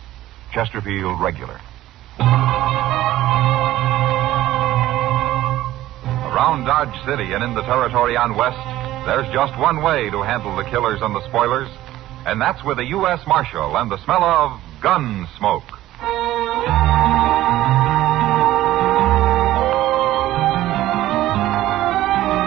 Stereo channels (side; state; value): left; quieter; 14.9 dB